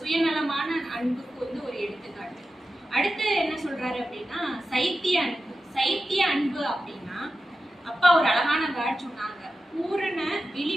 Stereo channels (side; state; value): both; normal; correlation 0.92